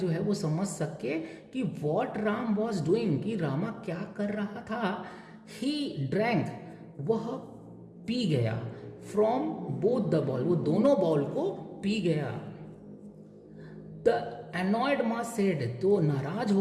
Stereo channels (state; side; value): identical; both; correlation 1.00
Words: है वो समझ सके कि वॉट राम वॉज डूइंग, कि रामा क्या कर रहा था। ही ड्रैंक, वह पी गया, फ्रॉम बोथ द बॉल, वो दोनों बॉल को पी गया। द एनॉयड माँ सेड, तो नाराज